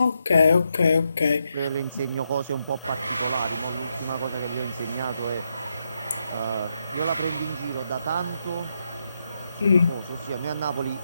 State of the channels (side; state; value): both; inverted; correlation -0.82